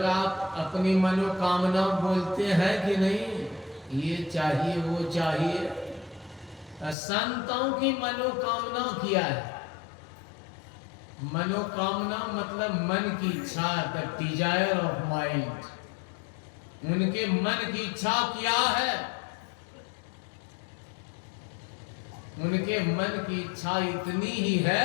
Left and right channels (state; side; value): drops out; right; at 7.0 s